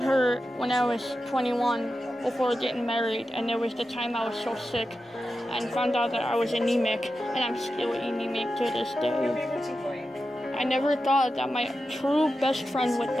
her when I was 21 before getting married, and there was the time I was so sick and found out that I was anemic, and I'm still anemic to this day. I never thought that my true best friend would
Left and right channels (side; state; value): both; normal; correlation 0.91